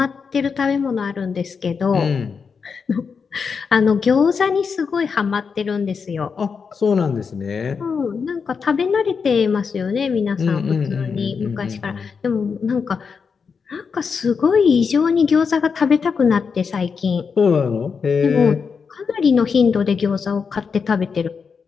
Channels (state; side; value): quieter; right; 5.7 dB